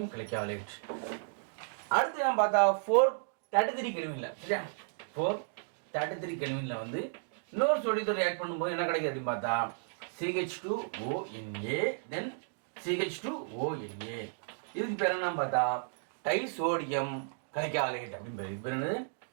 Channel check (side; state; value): left; silent; digital silence